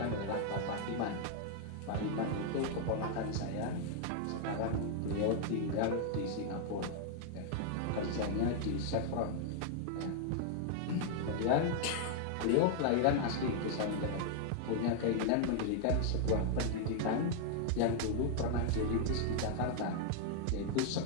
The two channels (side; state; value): both; different; correlation -0.01